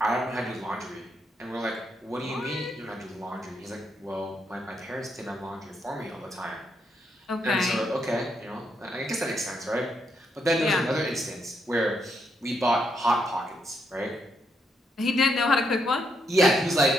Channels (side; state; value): both; normal; correlation 0.78